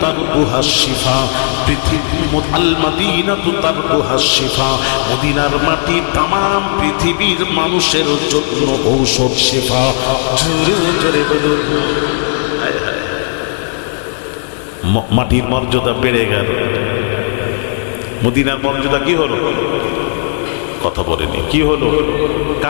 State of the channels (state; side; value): silent; right; digital silence